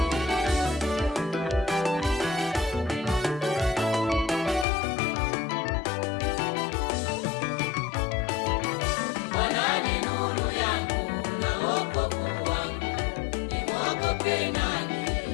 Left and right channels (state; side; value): drops out; right; at 4.7 s